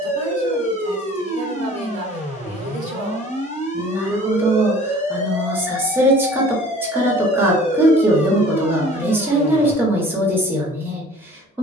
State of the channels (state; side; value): normal; both; correlation 0.48